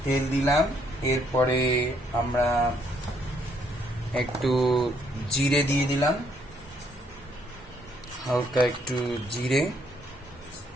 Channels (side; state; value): both; normal; correlation 0.69